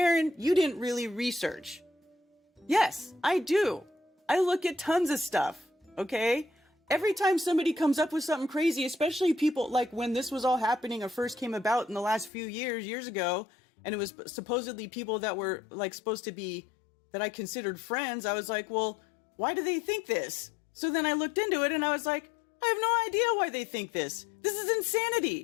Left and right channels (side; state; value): right; drops out; at 12.3 s